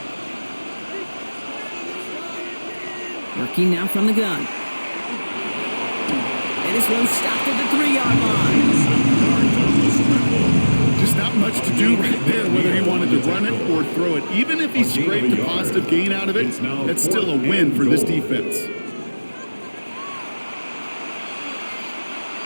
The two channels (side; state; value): both; inverted; correlation -1.00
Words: Working now from the gun. And this one stopped at the 3-yard line. Just not much to do right there, whether he wanted to run it or throw it. Even if he scraped a positive gain out of it, that's still a win for this defense.